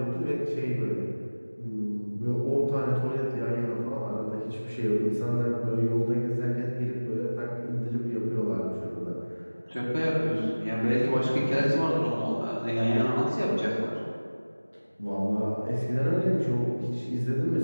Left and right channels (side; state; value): both; inverted; correlation -1.00